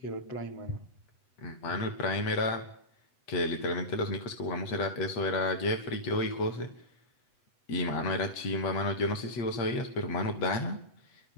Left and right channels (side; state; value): right; late; 8.0 ms